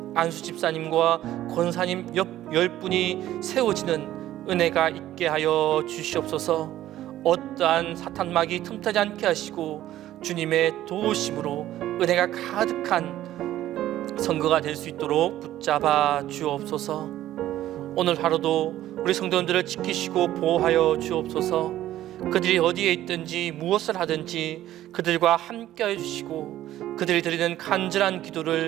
안수집사님과 권사님 10분이 세워지는 은혜가 있게 하여 주시옵소서. 어떠한 사탄막이 틈타지 않게 하시고 주님의 도우심으로 은혜가 가득한 선거가 될 수 있도록 붙잡아 주옵소서. 오늘 하루도 우리 성도님들을 지키시고 보호하여 주옵소서. 그들이 어디에 있든지 무엇을 하든지 그들과 함께하여 주시고 그들이 드리는 간절한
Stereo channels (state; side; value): quieter; left; 13.5 dB